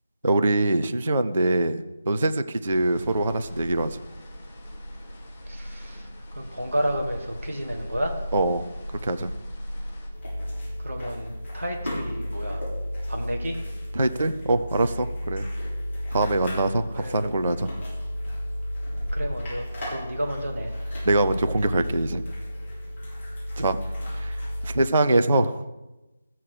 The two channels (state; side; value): inverted; both; correlation -0.85